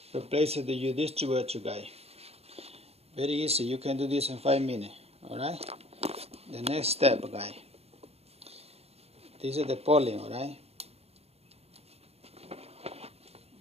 replace it with your distributor, guy. Very easy. You can do this in 5 minutes. Alright? The next step, guy. This is the polling, alright?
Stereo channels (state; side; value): late; left; 0.30 ms